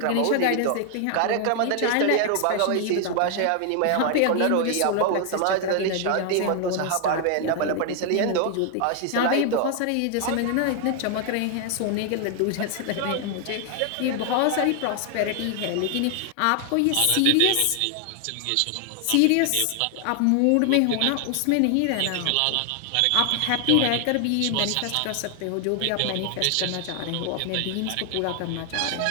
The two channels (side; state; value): both; different; correlation 0.00